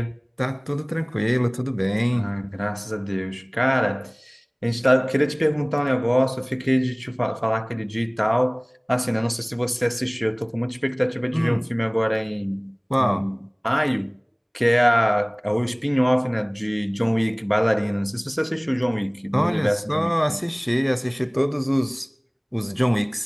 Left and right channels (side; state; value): both; identical; correlation 1.00